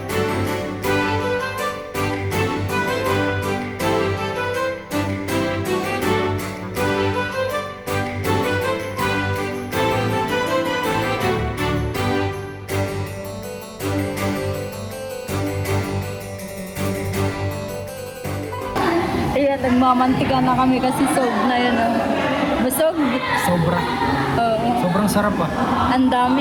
Ayan, nagmamantika na kami kasi sog na yun. Busog? Sobra. Oo. Sobrang sarap ah. Ang dami,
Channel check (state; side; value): identical; both; correlation 1.00